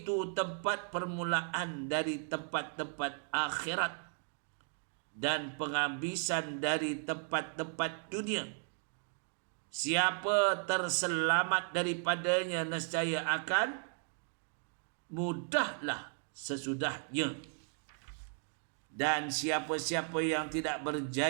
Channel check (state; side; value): silent; left; 54 dB below the other